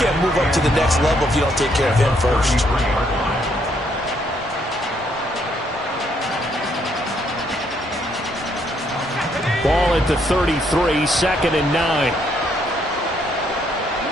move up to the next level if you don't take care of him first. Ball at the 33, second and 9.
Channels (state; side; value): normal; both; correlation 0.71